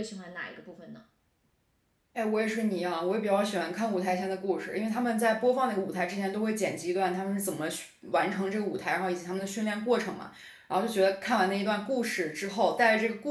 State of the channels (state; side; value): identical; both; correlation 1.00